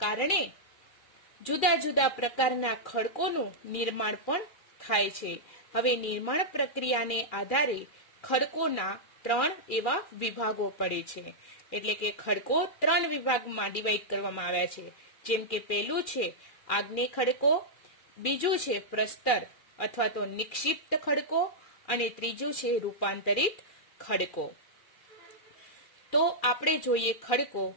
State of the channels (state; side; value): late; right; 2.4 ms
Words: કારણે જુદા જુદા પ્રકારના ખડકોનું નિર્માણ પણ થાય છે. હવે નિર્માણ પ્રક્રિયાને આધારે ખડકોના 3 એવા વિભાગો પડે છે. એટલે કે ખડકો 3 વિભાગમાં ડિવાઈડ કરવામાં આવ્યા છે. જેમ કે પહેલું છે આગ્નેય ખડકો, બીજું છે પ્રસ્તર અથવા તો નિક્ષિપ્ત ખડકો, અને ત્રીજું છે રૂપાંતરિત ખડકો. તો આપણે જોઈએ ખડકો.